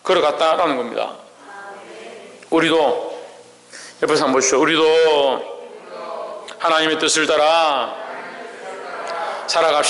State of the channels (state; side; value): identical; both; correlation 1.00